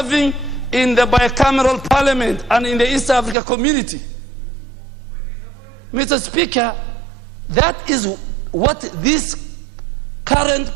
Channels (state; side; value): drops out; left; at 3.4 s